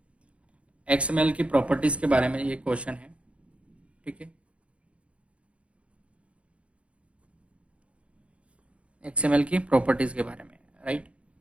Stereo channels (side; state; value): left; late; 0.061 ms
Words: XML की प्रॉपर्टीज के बारे में ये क्वेश्चन है। ठीक है, XML की प्रॉपर्टीज के बारे में, राइट।